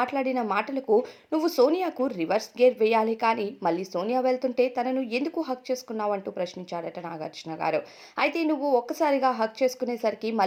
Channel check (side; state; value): both; identical; correlation 1.00